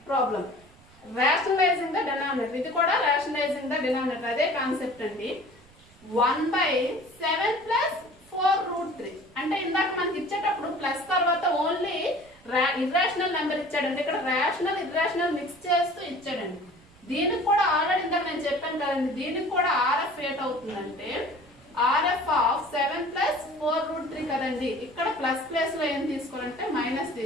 problem. Rationalizing the denominator. ఇది కూడా rationalizing the denominator. అదే కాన్సెప్ట్ అండి. 1/7 plus 4 root 3. అంటే ఇందాక మనకి ఇచ్చేటప్పుడు ప్లస్ తర్వాత ఓన్లీ ఇర్రేషనల్ నెంబర్ ఇచ్చాడండి. ఇక్కడ రేషనల్ ఇర్రేషనల్ మిక్స్ చేస్తూ ఇచ్చాడండి. దీనికి కూడా ఆల్రెడీ ఇందాక నేను చెప్పాను కదండి, దీనికి కూడా RF ఏట్ అవుతుందంటే RF ఆఫ్ 7 plus 4 root 3 కదండి. ఇక్కడ ప్లస్ ప్లేస్ లో ఏం తీసుకోవాలంటే మైనస్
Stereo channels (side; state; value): right; noise; rumble, 27 dB below the sound